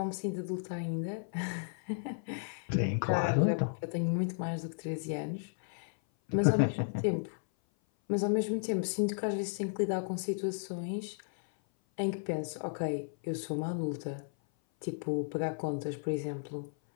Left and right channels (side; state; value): right; silent; 55 dB below the other